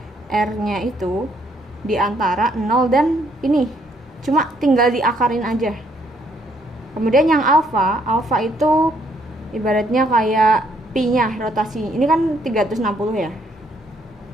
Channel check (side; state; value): both; normal; correlation 0.69